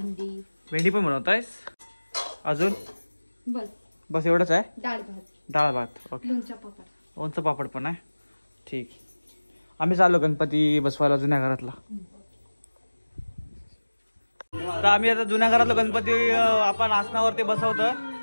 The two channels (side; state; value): both; inverted; correlation -1.00